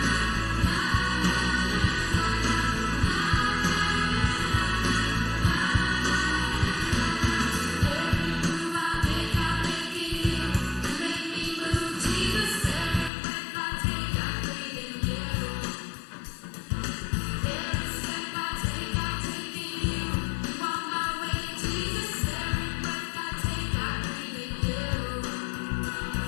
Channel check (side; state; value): right; drops out; at 13.1 s